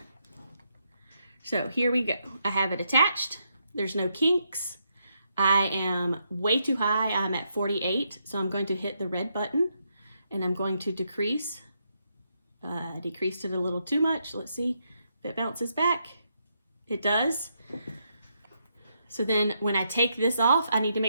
So here we go. I have it attached. There's no kinks. I am way too high. I'm at 48. So I'm going to hit the red button and I'm going to decrease. Decreased it a little too much. Let's see if it bounces back. It does. So then when I take this off, I need to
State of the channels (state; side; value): inverted; both; correlation -0.79